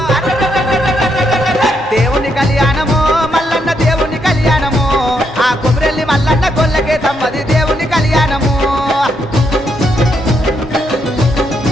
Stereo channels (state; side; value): normal; both; correlation 0.77